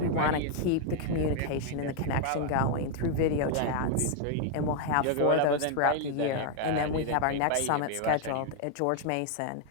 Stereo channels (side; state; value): both; different; correlation 0.00